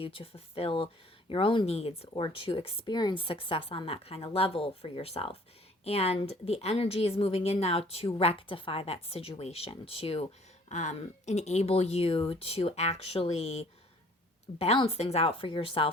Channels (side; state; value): both; normal; correlation 0.55